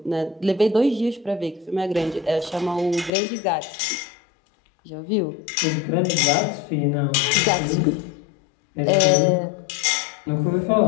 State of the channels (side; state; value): right; drops out; at 3.1 s